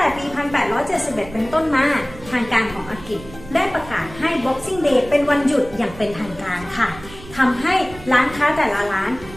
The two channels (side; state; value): right; noise; rumble, 17 dB below the sound